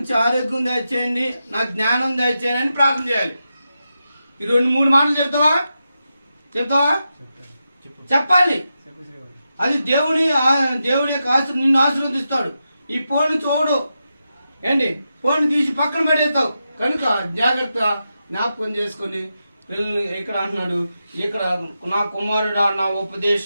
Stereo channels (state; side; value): inverted; both; correlation -0.88